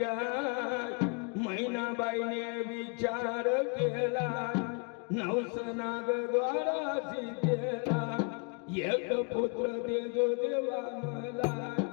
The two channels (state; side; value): quieter; right; 35.7 dB